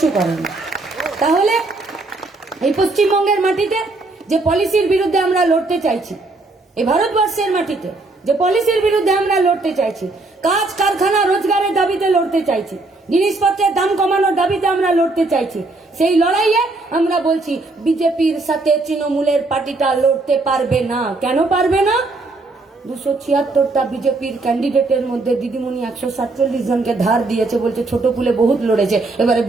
করেনি। তাহলে এই পশ্চিমবঙ্গের মাটিতে যে পলিসির বিরুদ্ধে আমরা লড়তে চাইছি, এই ভারতবর্ষের মাটিতে যে পলিসির বিরুদ্ধে আমরা লড়তে চাইছি, কাজ কারখানা রোজগারের দাবিতে লড়তে চাইছি, জিনিসপত্রের দাম কমানোর দাবিতে আমরা লড়তে চাইছি, সেই লড়াইয়ে আমরা বলছি বিজেপির সাথে তৃণমূলের পার্টিটা লড়তে পারবে না। কেন পারবে না? 276টা বিজেপির ক্যান্ডিডেটের মধ্যে দিদিমণি 147 জনকে ধার দিয়েছে, বলছে ছোট ফুলে বহুত লড়েছে, এবারে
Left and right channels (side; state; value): left; quieter; 3.2 dB